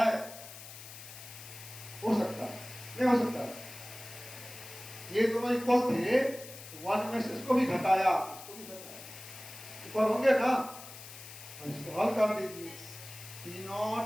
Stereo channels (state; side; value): noise; left; hiss, 14 dB below the sound